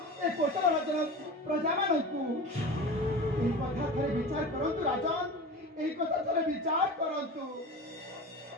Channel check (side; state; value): both; normal; correlation 0.32